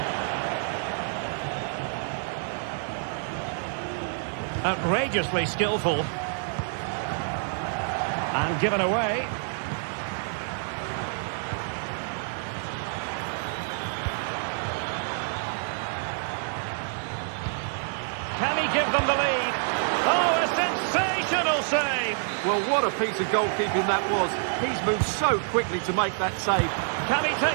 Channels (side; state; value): left; silent; digital silence